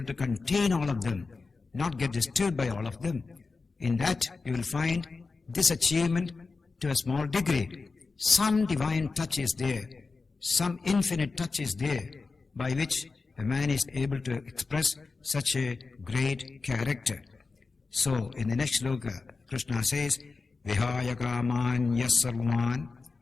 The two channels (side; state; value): right; quieter; 4.2 dB